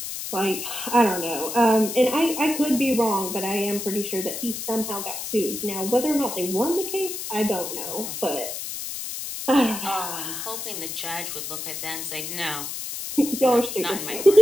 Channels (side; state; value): left; noise; hiss, 6 dB below the sound